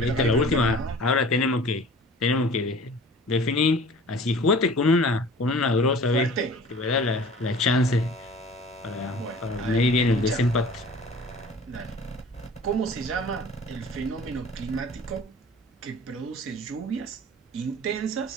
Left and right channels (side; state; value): both; normal; correlation 0.45